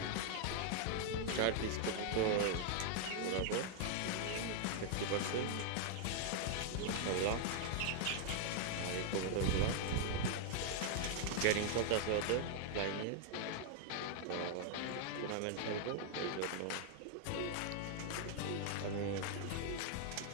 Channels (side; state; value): both; different; correlation 0.00